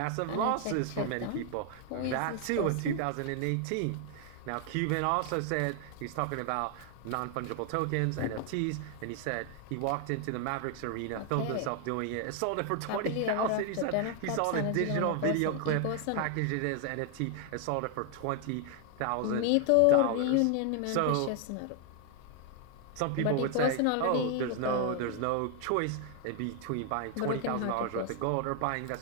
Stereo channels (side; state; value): both; different; correlation 0.00